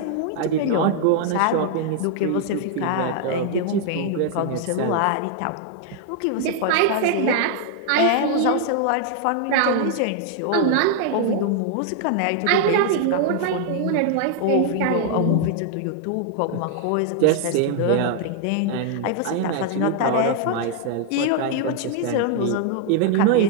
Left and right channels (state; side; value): different; both; correlation 0.00